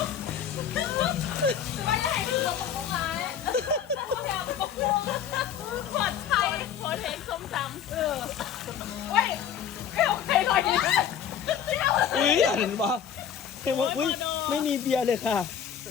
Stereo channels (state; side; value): quieter; right; 8.6 dB